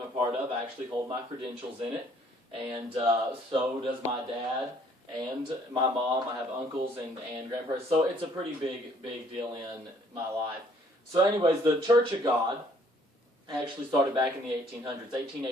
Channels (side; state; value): both; normal; correlation 0.61